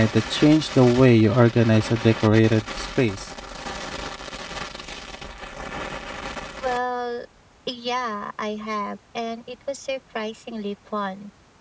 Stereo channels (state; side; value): identical; both; correlation 1.00